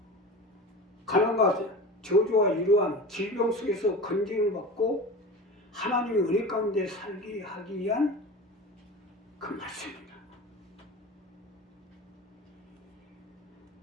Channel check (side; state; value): both; normal; correlation 0.32